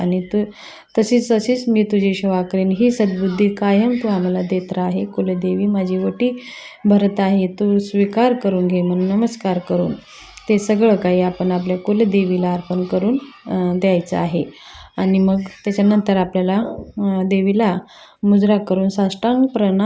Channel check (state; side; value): identical; both; correlation 1.00